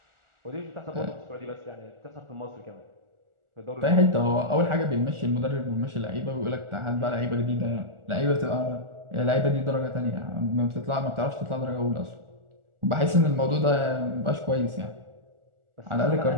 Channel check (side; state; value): left; late; 1.4 ms